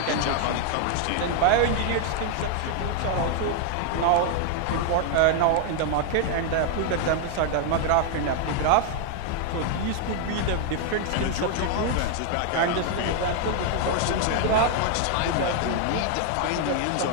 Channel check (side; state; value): both; different; correlation 0.00